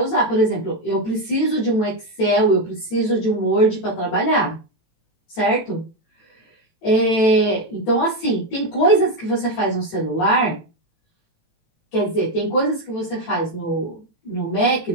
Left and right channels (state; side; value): late; right; 18 ms